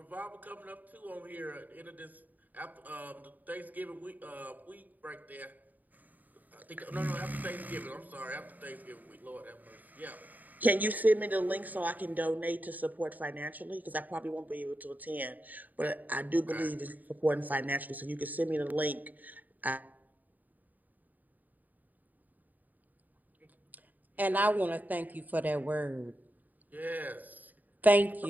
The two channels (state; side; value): late; left; 0.083 ms